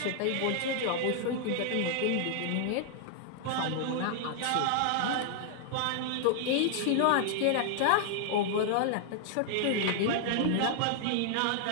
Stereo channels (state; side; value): different; both; correlation 0.00